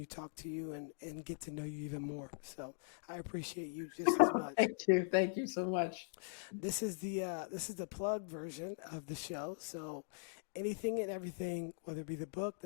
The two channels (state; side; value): silent; right; digital silence